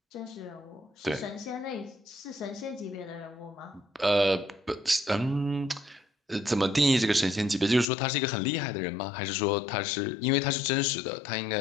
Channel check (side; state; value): right; drops out; at 7.9 s